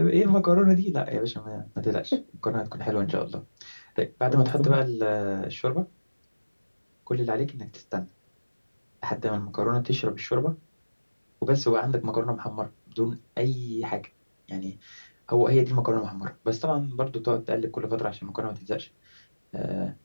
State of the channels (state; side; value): inverted; both; correlation -1.00